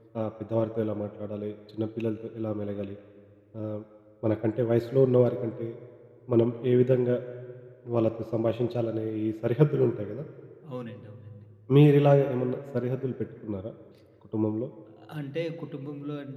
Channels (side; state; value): both; identical; correlation 1.00